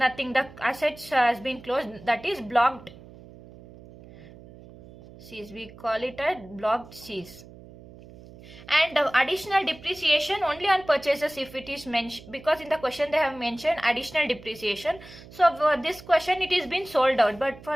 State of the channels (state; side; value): noise; right; hum, 19 dB below the sound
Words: the assets has been closed, that is blocked C's, we call it as blocked C's. And additional depreciation only on purchases if it is mentioned, because in the question they have mentioned additional depreciation. So for this question it is been sold out, but for